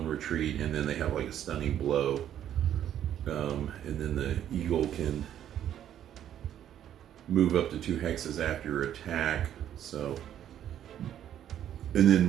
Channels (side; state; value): left; quieter; 10.6 dB